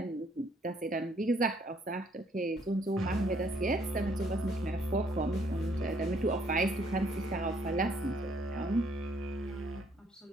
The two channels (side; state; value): both; normal; correlation 0.66